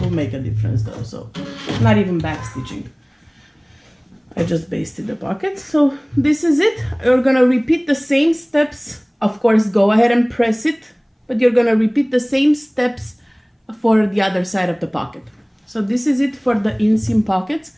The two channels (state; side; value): identical; both; correlation 1.00